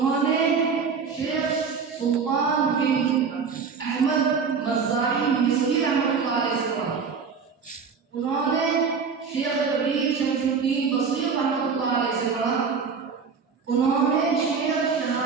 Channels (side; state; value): left; quieter; 5.7 dB